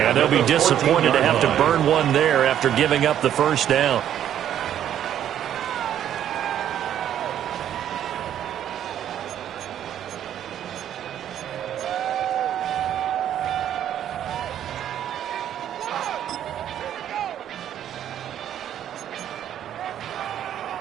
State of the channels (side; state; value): left; quieter; 10.5 dB